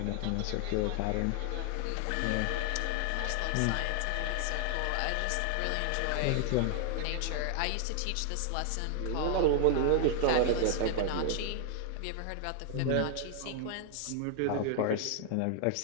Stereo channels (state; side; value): different; both; correlation 0.00